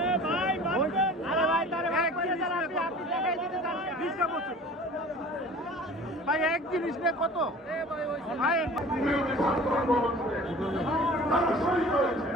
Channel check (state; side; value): normal; both; correlation 0.44